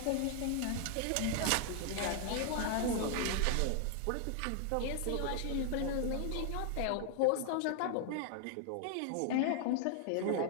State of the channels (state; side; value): different; both; correlation 0.00